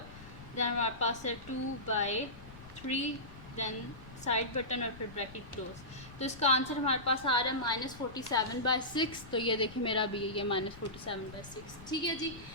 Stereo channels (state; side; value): noise; left; rumble, 17 dB below the sound